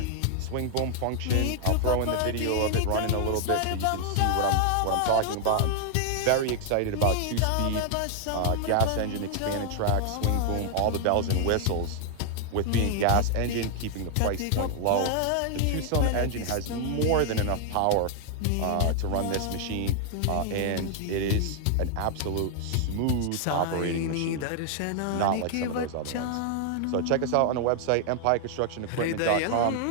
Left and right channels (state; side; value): different; both; correlation 0.00